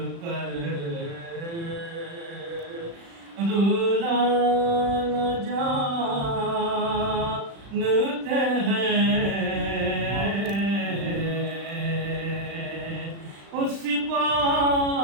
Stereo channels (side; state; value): left; late; 36 ms